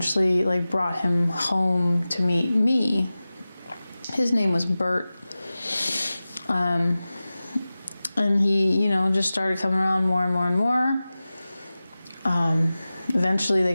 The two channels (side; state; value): both; inverted; correlation -0.96